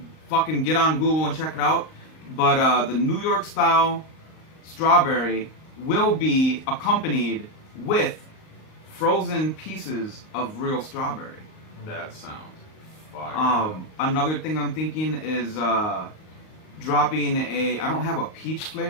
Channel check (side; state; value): right; late; 38 ms